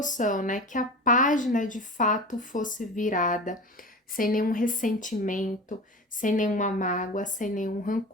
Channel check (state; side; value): normal; both; correlation 0.32